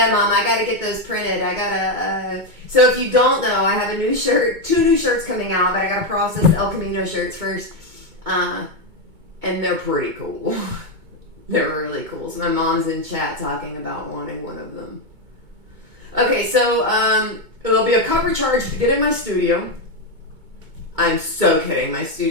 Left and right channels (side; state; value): left; late; 2.2 ms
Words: Mom, I gotta get those printed. So if you don't know, I have a new shirt, 2 new shirts coming out, but I gotta process the El Camino shirts first. And they're pretty cool. They're really cool. So my mom's in chat talking about wanting one of them. Okay, so there'll be a cover charge to get in my studio. I'm so kidding. My